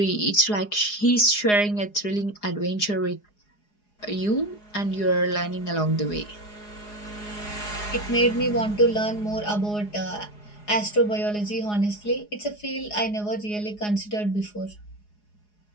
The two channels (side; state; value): right; late; 4.8 ms